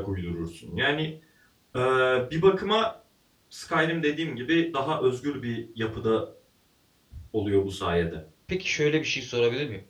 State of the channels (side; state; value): both; identical; correlation 1.00